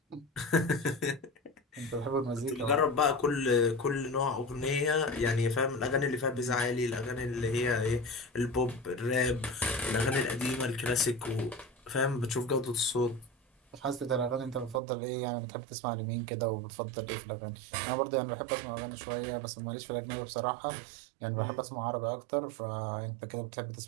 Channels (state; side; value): drops out; left; at 14.8 s